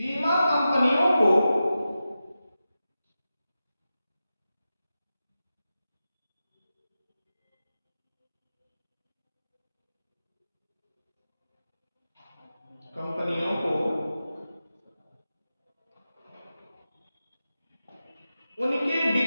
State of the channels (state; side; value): inverted; both; correlation -0.93